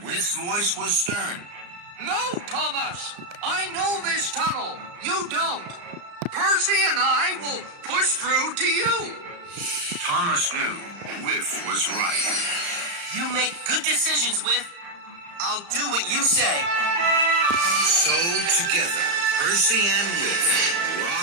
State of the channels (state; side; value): late; left; 35 ms